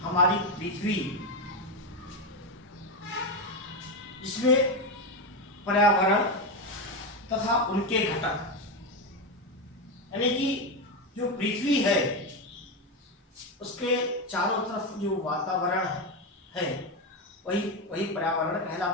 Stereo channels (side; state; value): both; normal; correlation 0.11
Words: हमारी पृथ्वी, जिसमें पर्यावरण तथा उनके घटक, यानी कि जो पृथ्वी है उसके चारों तरफ जो वातावरण है वही पर्यावरण